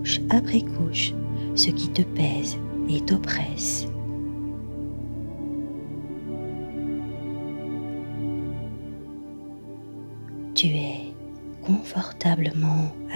après couche ce qui te pèse et t'oppresse. Tu es confortablement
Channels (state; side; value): inverted; both; correlation -1.00